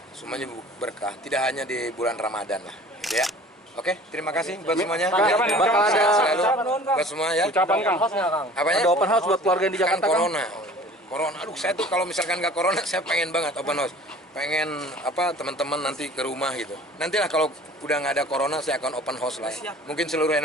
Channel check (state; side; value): normal; both; correlation 0.46